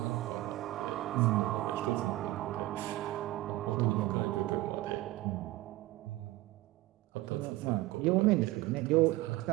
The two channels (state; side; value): quieter; left; 17.8 dB